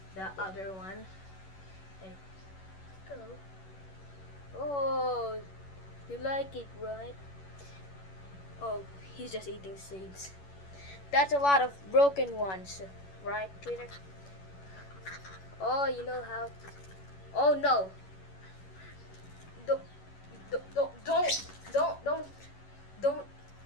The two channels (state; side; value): late; right; 11 ms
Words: the other one. Like, go. Oh, you like it, right? Oh, he's just eating seeds. That's a lot of broken ones, right, Twitter? Oh, you know how to... Oh no! Don't